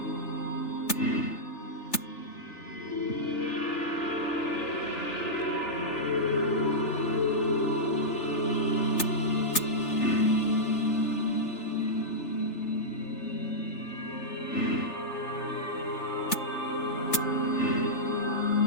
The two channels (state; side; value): late; right; 3.4 ms